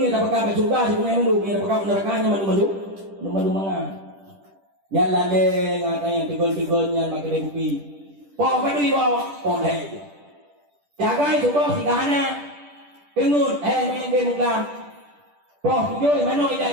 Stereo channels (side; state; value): left; late; 10 ms